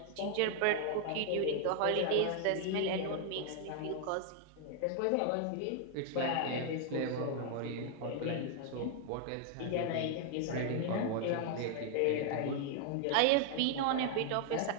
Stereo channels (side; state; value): both; different; correlation 0.00